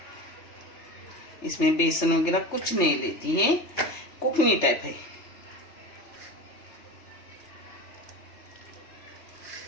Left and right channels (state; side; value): late; right; 3.3 ms